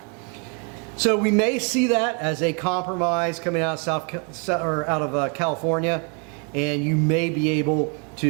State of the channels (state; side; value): quieter; left; 37.0 dB